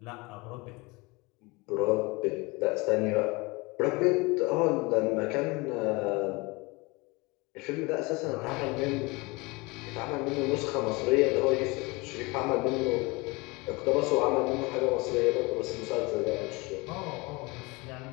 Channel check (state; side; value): quieter; right; 25.3 dB